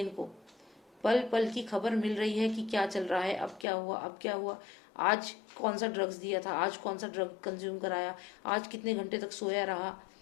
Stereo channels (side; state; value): right; drops out; at 3.7 s